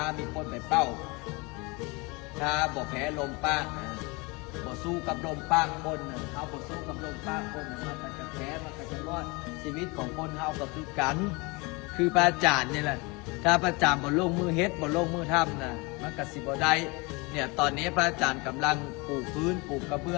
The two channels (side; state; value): right; quieter; 27.0 dB